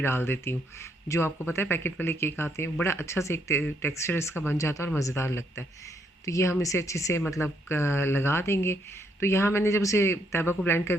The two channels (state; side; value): normal; both; correlation 0.73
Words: देती हूँ। जो आपको पता है पैकेट वाले केक आते हैं, बड़ा अच्छा से एक टेक्सचर इसका बन जाता है और मज़ेदार लगता है। तो ये हम इसे अच्छे से मतलब लगा देंगे। तो यहाँ मैंने जब उसे तैयबा को ब्लेंड